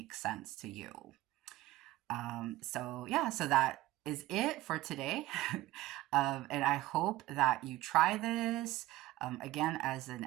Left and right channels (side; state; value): left; quieter; 17.1 dB